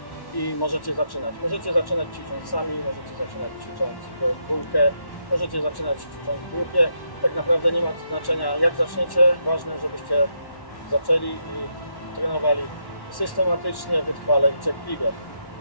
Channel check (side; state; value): right; late; 1.1 ms